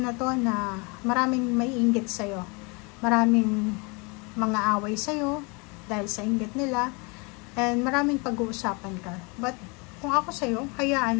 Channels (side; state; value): right; quieter; 30.0 dB